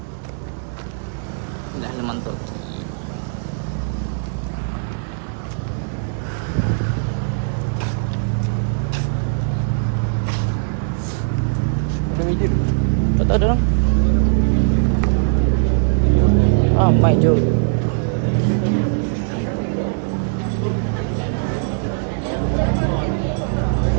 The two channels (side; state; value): left; silent; 65 dB below the other